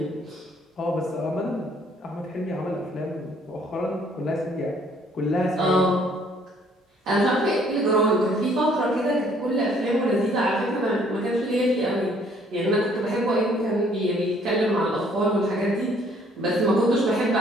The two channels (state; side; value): normal; both; correlation 0.62